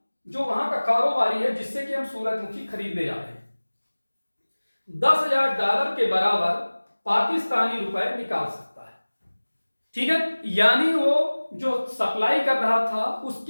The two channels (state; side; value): inverted; both; correlation -1.00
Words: जो वहां का कारोबारी है जिससे कि हम सूरजमुखी खरीदने जा रहे हैं, $10,000 के बराबर पाकिस्तानी रुपए निकाल सकता है। ठीक है, यानी वो जो सप्लाई कर रहा था